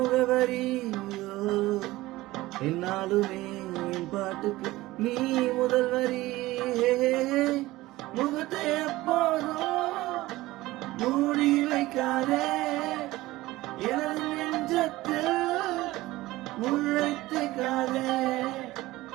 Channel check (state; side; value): quieter; left; 18.2 dB